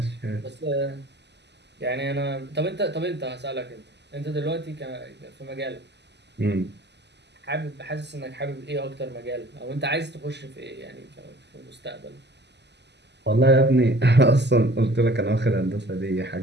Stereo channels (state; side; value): late; left; 0.50 ms